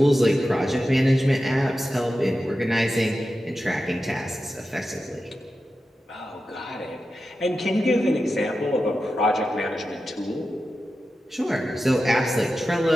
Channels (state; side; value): normal; both; correlation 0.92